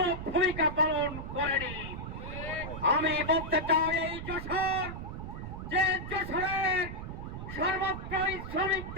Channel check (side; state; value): right; noise; rumble, 8 dB below the sound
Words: ভূমিকা পালন করেনি। আমি বলতে চাই, এই যশোর, যে যশোরের সর্বত্রই